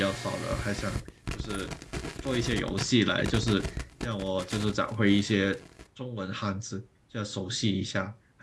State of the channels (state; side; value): identical; both; correlation 1.00